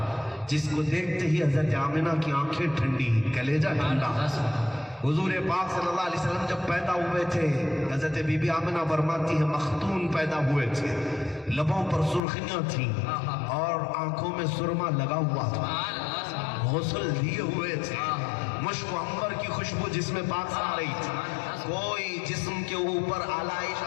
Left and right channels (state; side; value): drops out; right; at 12.2 s